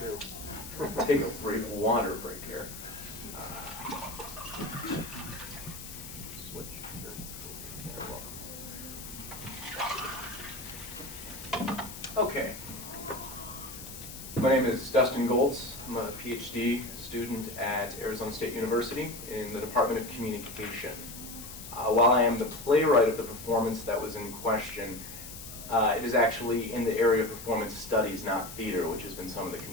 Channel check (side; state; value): left; noise; hiss, 12 dB below the sound